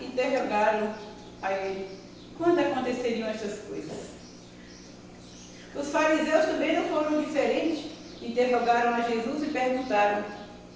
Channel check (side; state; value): both; identical; correlation 1.00